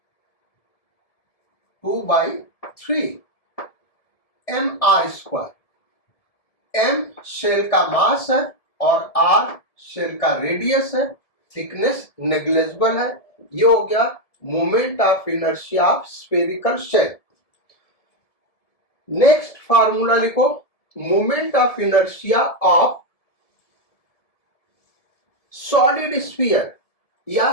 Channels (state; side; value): late; right; 1.7 ms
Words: mr²। m shell का मास है और r शेल का रेडियस है, थिकनेस नेग्लिजिबल है। ये हो गया moment of inertia of spherical shell. Next formula लिखो, moment of inertia of solid sphere, या